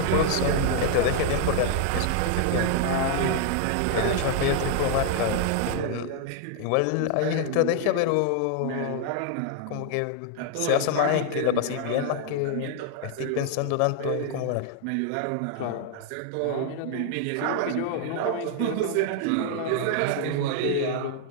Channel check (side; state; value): both; different; correlation 0.00